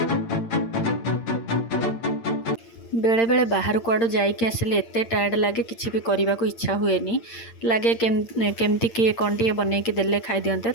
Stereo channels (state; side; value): late; right; 8.8 ms